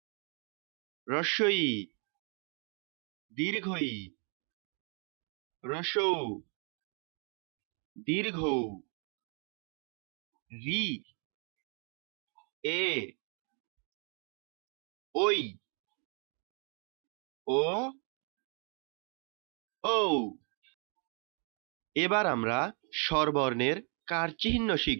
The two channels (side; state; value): left; quieter; 39.3 dB